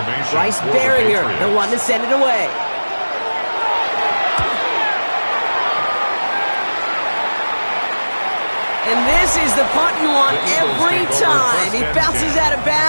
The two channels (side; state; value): both; inverted; correlation -1.00